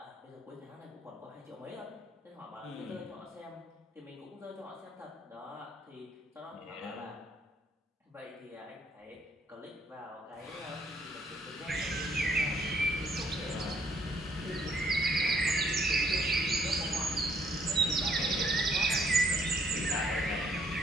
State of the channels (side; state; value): both; normal; correlation 0.67